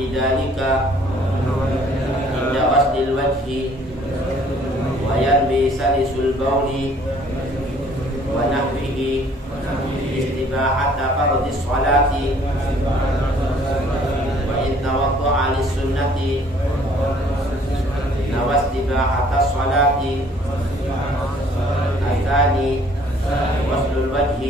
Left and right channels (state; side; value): normal; both; correlation 0.58